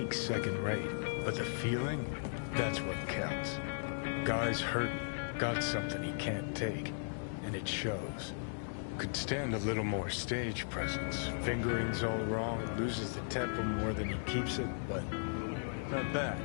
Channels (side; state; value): right; silent; digital silence